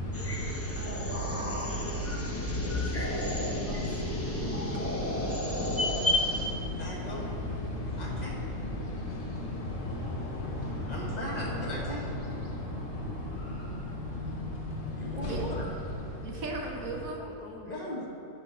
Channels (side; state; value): both; normal; correlation 0.07